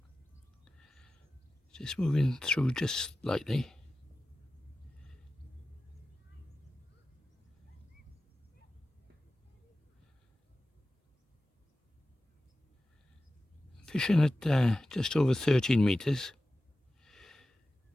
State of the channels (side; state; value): both; normal; correlation 0.94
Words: Just moving through just slightly. Fishing at just over 13 metres.